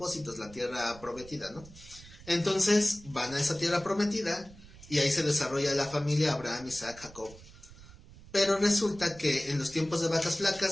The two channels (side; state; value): right; noise; rumble, 20 dB below the sound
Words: la tierra prometida, ¿no? Entonces van a esa tierra prometida y ahí se desarrolla la familia Abraham, Isaac, Jacob. Pero resulta que en los tiempos de vacas